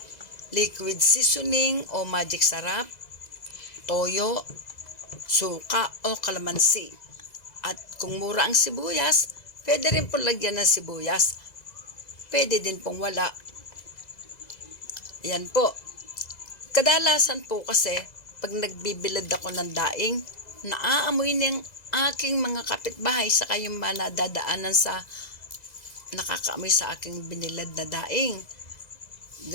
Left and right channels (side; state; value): right; late; 2.0 ms